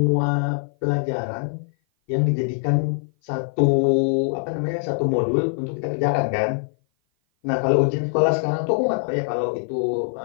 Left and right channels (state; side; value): silent; right; 56 dB below the other